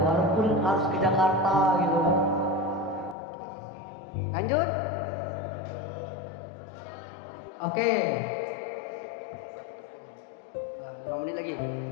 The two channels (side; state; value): right; drops out; at 3.2 s